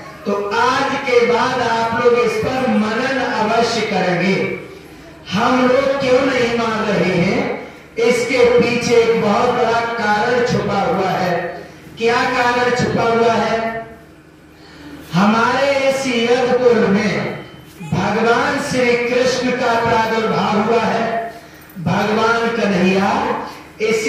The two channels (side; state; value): both; identical; correlation 1.00